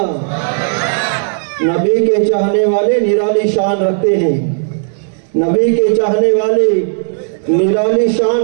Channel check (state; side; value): silent; left; digital silence